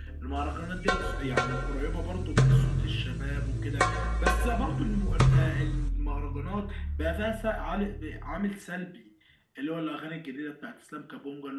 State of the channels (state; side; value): identical; both; correlation 1.00